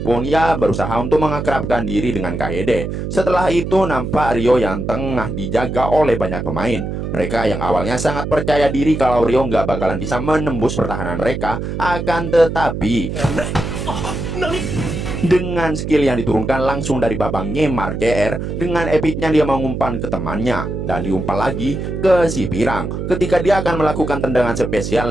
ya berusaha untuk mengakrabkan diri dengan Kaede. Setelah itu nampak Rio yang tengah dijaga oleh banyak pemain. Mereka yang awalnya sangat percaya diri kalau Rio nggak bakalan bisa menembus pertahanan mereka, akan tetapi dengan skill yang diturunkan langsung dari babang Neymar JR, dengan epicnya dia mengumpan ke temannya dan diumpan lagi ke si Pirang ketika dia akan melakukan tendangan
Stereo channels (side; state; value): right; noise; hum, 4 dB below the sound